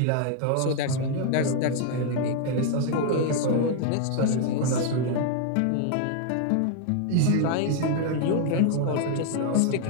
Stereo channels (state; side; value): different; both; correlation 0.00